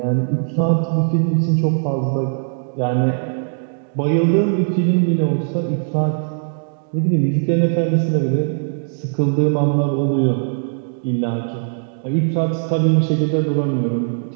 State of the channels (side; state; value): left; silent; digital silence